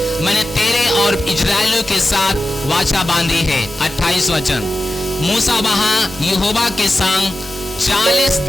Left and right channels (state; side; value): normal; both; correlation 0.93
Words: मैंने तेरे और इजराइलियों के साथ वाचा बांधी है। 28 वचन। मूसा वहां यहोवा के संग 40